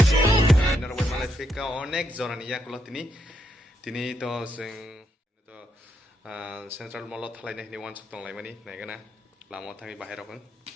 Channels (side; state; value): both; normal; correlation 0.79